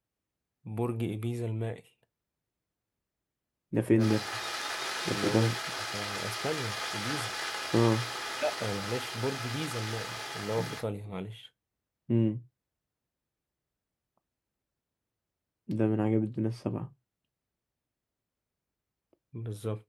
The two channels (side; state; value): both; identical; correlation 1.00